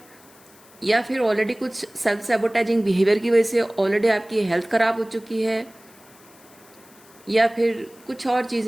या फिर ऑलरेडी कुछ सेल्फ सैबोटाइजिंग बिहेवियर की वजह से ऑलरेडी आपकी हेल्थ ख़राब हो चुकी है, या फिर कुछ और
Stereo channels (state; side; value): noise; left; hiss, 26 dB below the sound